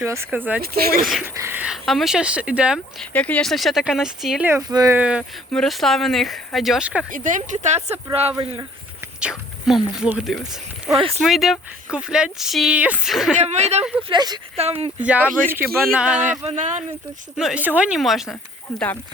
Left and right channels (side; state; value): both; normal; correlation 0.56